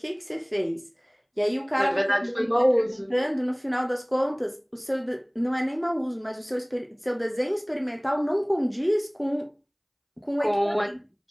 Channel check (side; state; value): both; identical; correlation 1.00